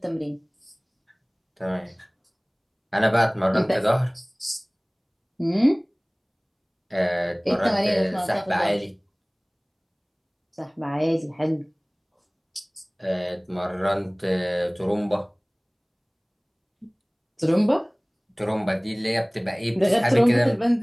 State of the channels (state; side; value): identical; both; correlation 1.00